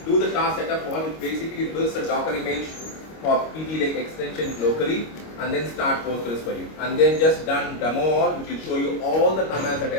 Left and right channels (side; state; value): right; late; 25 ms